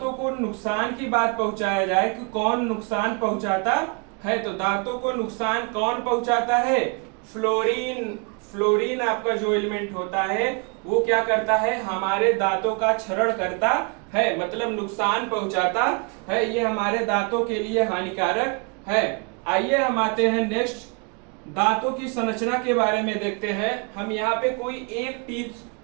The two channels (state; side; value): quieter; left; 34.6 dB